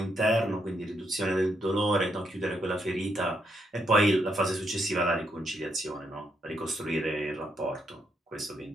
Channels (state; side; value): normal; both; correlation 0.78